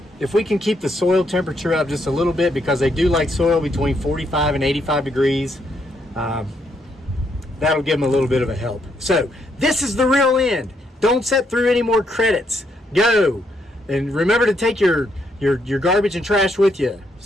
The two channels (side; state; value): both; normal; correlation 0.75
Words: if we can keep the soil temperature up just a little bit, because they do like soil between 45 and 85 degrees, that'll give them a little bit of a help. So this is the real end. Don't sit through any more credits. Go. And remember to take your garbage and trash with you